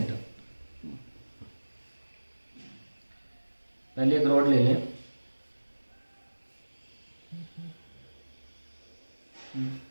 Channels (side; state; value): both; inverted; correlation -1.00